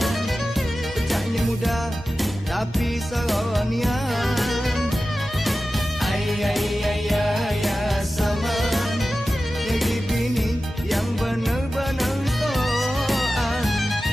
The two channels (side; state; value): both; normal; correlation 0.94